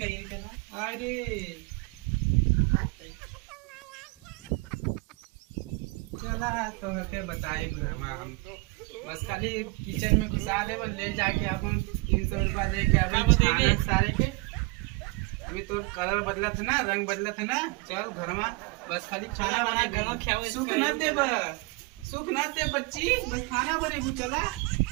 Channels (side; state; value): left; quieter; 25.9 dB